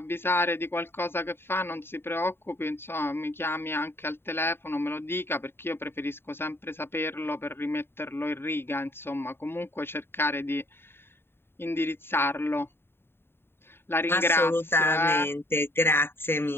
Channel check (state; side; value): late; right; 0.11 ms